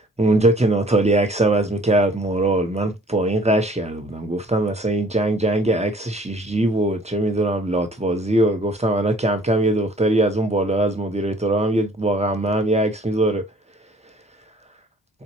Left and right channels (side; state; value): both; normal; correlation 0.55